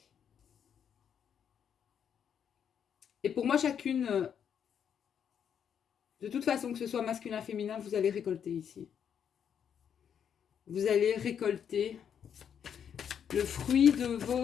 Et pour moi, chacune, de toute façon, que ce soit masculin, féminin, vous allez récolter ici. Vous allez récolter le fruit de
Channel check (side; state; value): right; quieter; 8.2 dB